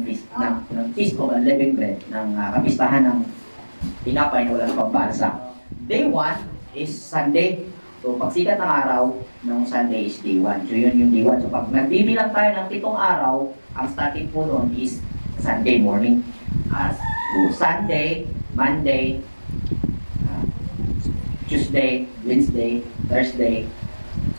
Feast of Unleavened Bread, ng kapistahan ng tinapay na walang pambansa. Day 1 is Sunday. So, pagsikat ng araw ng Sunday is day 1. So, yun yung day 1. So, pag nagbibilang tayo ng 7 araw, ang starting po noon is Sunday morning. So, Sunday, Monday, Tuesday, Wednesday, Thursday,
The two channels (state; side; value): inverted; both; correlation -1.00